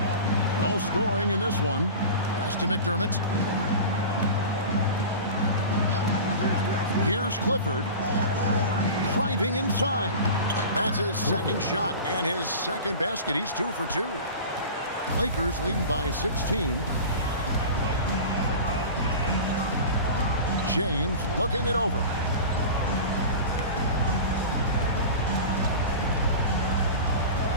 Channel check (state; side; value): inverted; both; correlation -0.33